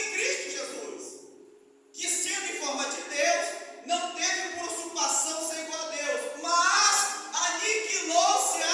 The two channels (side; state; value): both; identical; correlation 1.00